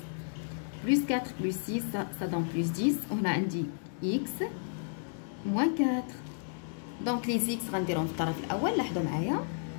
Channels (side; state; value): right; silent; digital silence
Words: Plus 4 plus 6 ça donne plus 10. On a عندي x moins 4. Donc les x غنديرهم في الطرف الأول. لاحظوا معايا.